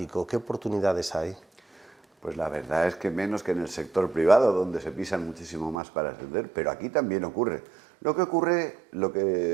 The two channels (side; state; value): left; drops out; at 5.8 s